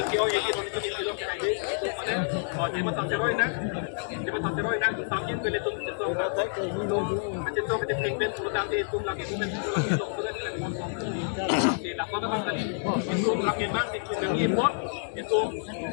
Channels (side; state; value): right; silent; digital silence